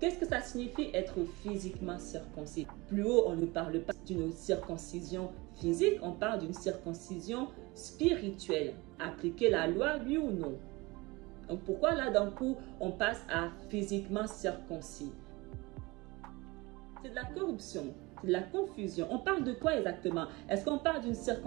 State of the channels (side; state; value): left; quieter; 23.3 dB